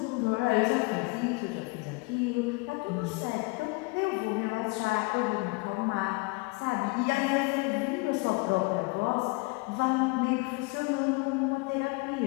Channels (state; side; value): quieter; right; 27.6 dB